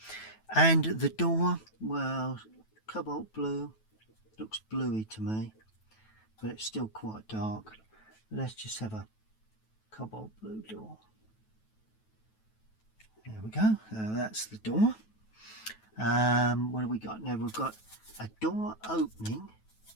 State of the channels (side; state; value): right; late; 9.2 ms